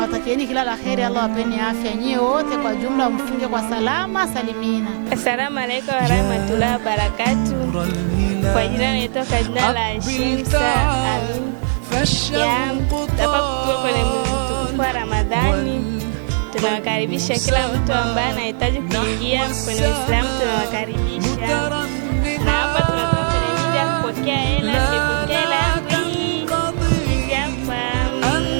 kila la kheri. Allah wapeni afya nyie wote kwa jumla, mfunge kwa salama salimina. Assalamu alaykum wa rahmatullahi wa barakatuh. Kwa jina naitwa jina la Shemsa Alim. Hapa tuko kwenye mtukufu wa Ramadhani. Tunawakaribisha kila mtu ambaye anahitaji kuingia kwenye Uislamu, tunawakaribisha. Na hapa tunatoka kwenye media kupokea hela. Nimepokea hela yangu hizi hapa.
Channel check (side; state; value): left; silent; digital silence